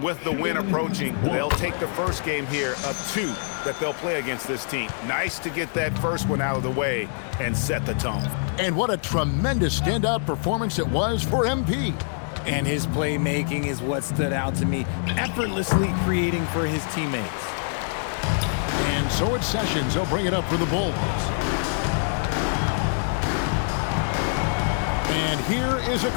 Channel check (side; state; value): right; silent; digital silence